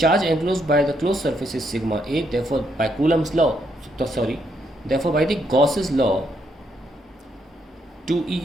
enclosed by the closed surface is sigma A. Therefore, by the Gauss's law,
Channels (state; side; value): normal; both; correlation 0.75